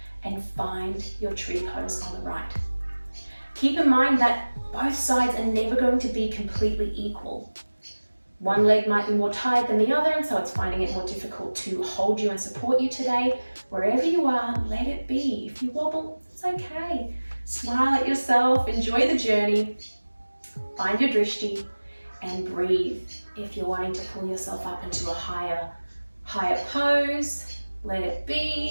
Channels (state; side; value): inverted; both; correlation -1.00